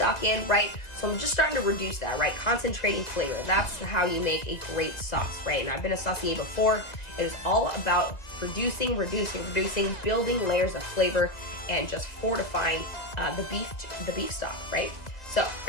in, right? So I'm just starting to reduce that, right? Concentrating flavor. That's how you make a great sauce, right? And I've been a saucier before. It is all about reducing, building layers of flavor, and just fortifying the beef stock, right? So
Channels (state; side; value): late; right; 2.0 ms